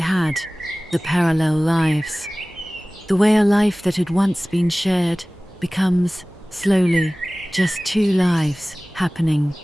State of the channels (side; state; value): both; normal; correlation 0.98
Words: the parallel lives. The way a life that had once been shared becomes, slowly, just two lives happening